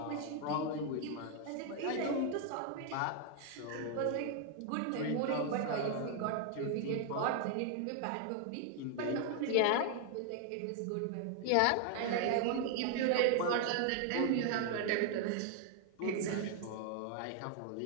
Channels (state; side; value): different; both; correlation 0.00